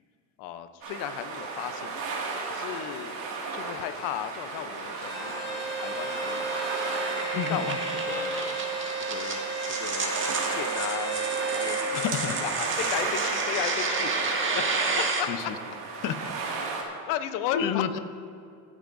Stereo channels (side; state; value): both; normal; correlation 0.00